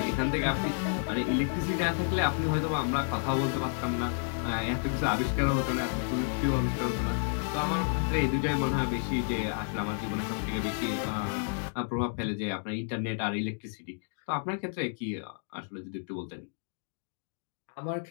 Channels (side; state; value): right; silent; digital silence